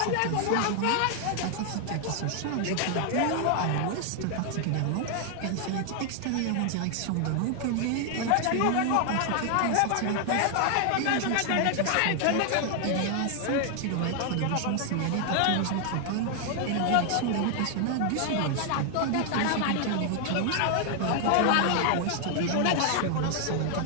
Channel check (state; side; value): different; both; correlation 0.00